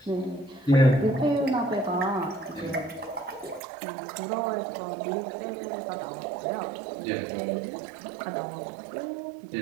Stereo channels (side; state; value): left; drops out; at 3.6 s